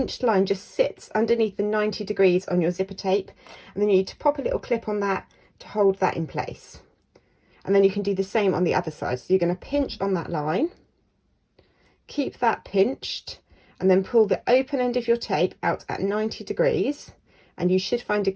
line just sits underneath the 90 degrees on your zipper tape. And then you need to pop a little clip on that to hold that in place. And then you can do the same on the other side. So you're going to pinch on that line, keep that pinched, and then pull the open end of your tape out at 90 degrees. And you should find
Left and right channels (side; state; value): both; identical; correlation 1.00